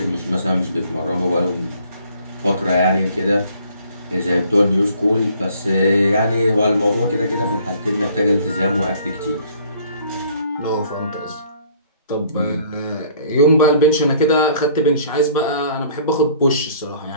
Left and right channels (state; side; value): inverted; both; correlation -0.58